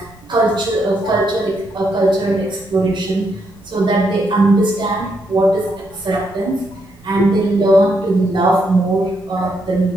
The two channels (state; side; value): noise; right; rumble, 26 dB below the sound